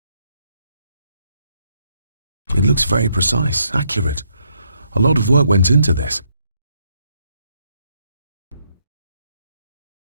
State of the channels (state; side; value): inverted; both; correlation -0.75